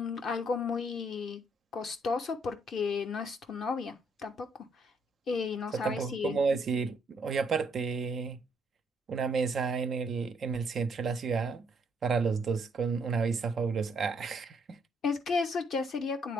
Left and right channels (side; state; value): both; normal; correlation 0.70